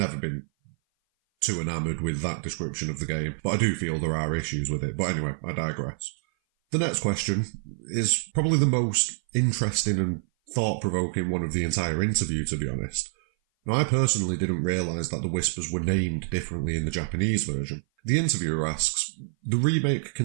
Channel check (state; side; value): silent; left; 57 dB below the other